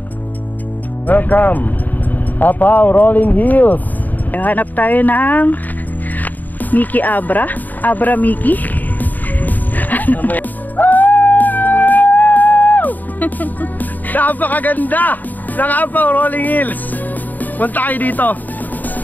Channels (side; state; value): right; late; 0.084 ms